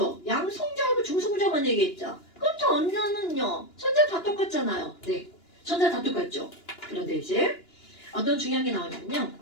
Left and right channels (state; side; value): late; right; 2.9 ms